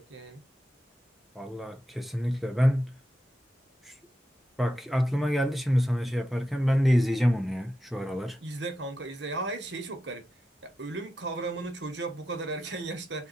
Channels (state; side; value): normal; both; correlation 0.88